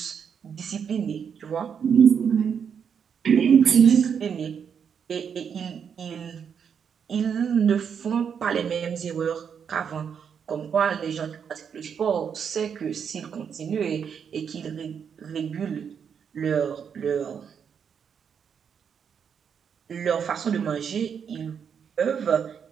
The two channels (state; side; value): quieter; left; 7.3 dB